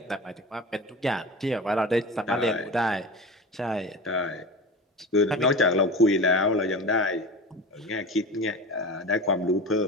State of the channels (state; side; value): normal; both; correlation 0.30